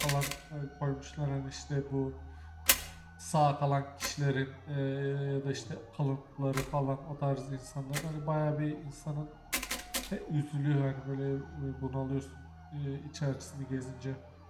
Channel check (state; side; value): identical; both; correlation 1.00